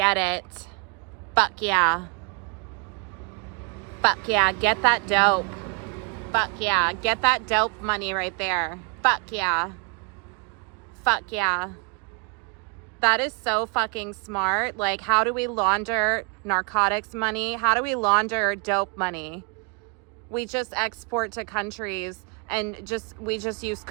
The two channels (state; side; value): quieter; left; 33.3 dB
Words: it. Fuck yeah. Fuck yeah, get that dope. Fuck yeah, get that dope money right there. Fuck yeah. Fuck yeah. That is so fucking smart. Like, how do we launder narcotics money? How do we launder dope money? We just export to countries and we just use